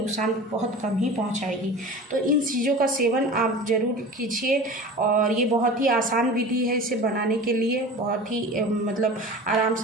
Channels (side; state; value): both; normal; correlation 0.36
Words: बहुत कम ही पहुंचाएगी। तो इन चीज़ों का सेवन आप ज़रूर कीजिए और ये बहुत ही आसान विधि है। इसे बनाने के लिए बहुत ही मतलब आराम